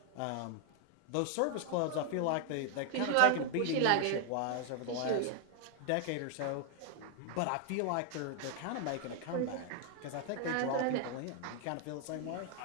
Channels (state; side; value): different; both; correlation 0.00